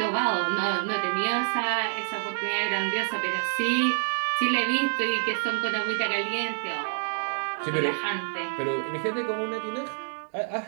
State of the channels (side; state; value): left; silent; digital silence